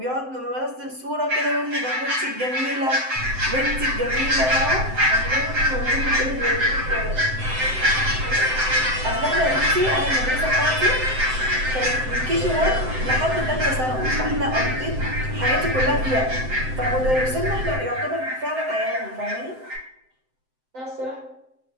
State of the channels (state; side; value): late; left; 7.8 ms